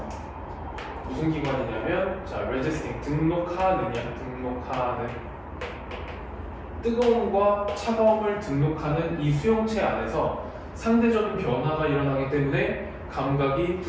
무슨 기관이냐면 자 레지스팅 등록하는 뜨거움과 차가움을 등록하는 이 수용체 안에서 상대적인 변화가 일어나기 때문에 감각이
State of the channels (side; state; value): both; identical; correlation 1.00